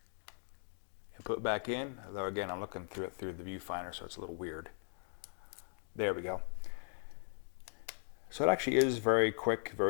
and put back in. Although again, I'm looking through it through the viewfinder, so it's a little weird. There we go. So it actually is very quick,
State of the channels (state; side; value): silent; right; digital silence